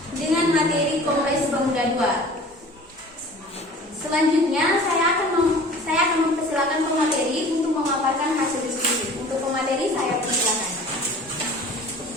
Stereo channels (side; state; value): both; normal; correlation 0.44